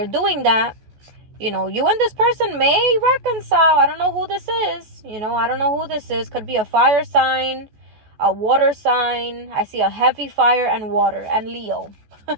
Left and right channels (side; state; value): left; late; 14 ms